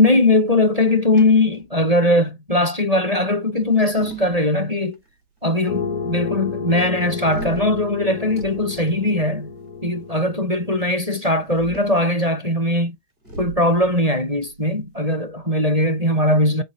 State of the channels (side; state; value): left; late; 1.8 ms